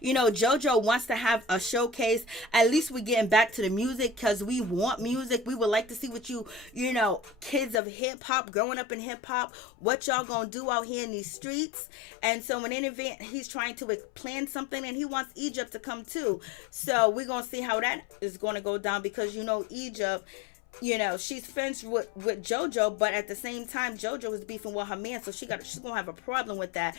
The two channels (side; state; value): right; drops out; at 7.8 s